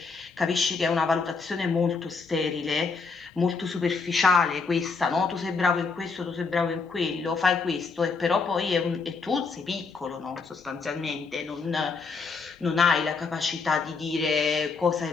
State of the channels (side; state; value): right; quieter; 4.7 dB